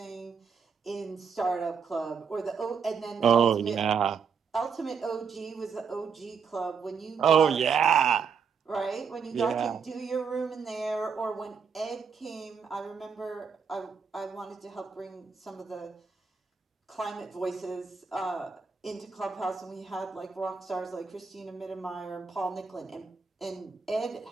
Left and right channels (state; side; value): quieter; left; 6.1 dB